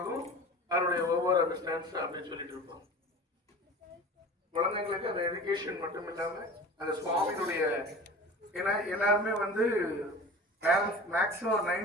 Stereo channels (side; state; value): both; normal; correlation 0.38